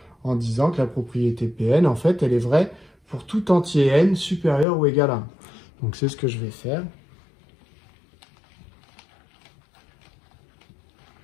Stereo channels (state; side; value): drops out; right; at 4.7 s